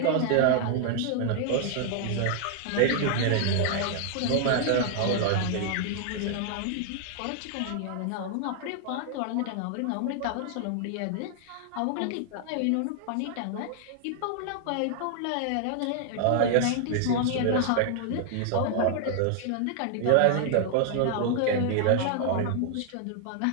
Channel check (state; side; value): different; both; correlation 0.00